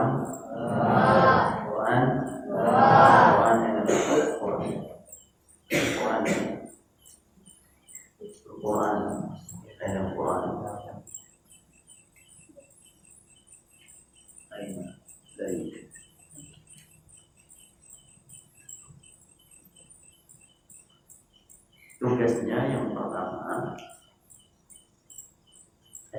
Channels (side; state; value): both; identical; correlation 1.00